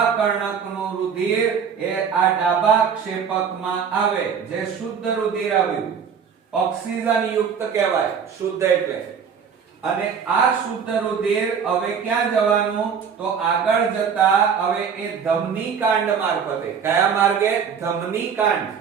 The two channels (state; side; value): quieter; left; 6.9 dB